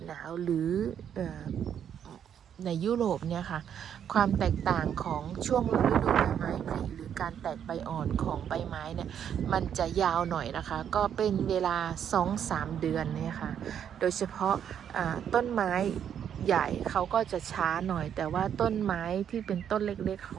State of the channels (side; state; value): left; quieter; 8.9 dB